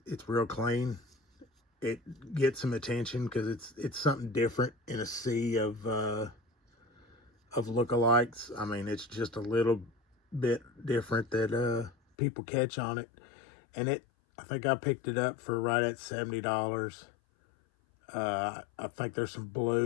It's real clean. It gets some attention because it's something different in a sea of lookalikes. I mean, it's just a little bit different that people catch on it. And I think I picked it up for right at $70. I think there's some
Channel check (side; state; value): right; drops out; at 12.0 s